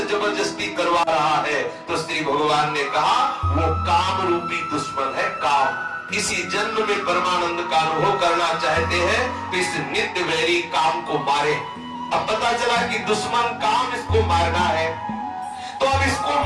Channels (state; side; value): identical; both; correlation 1.00